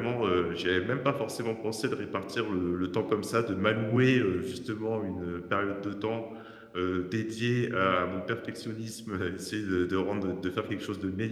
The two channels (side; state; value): both; identical; correlation 1.00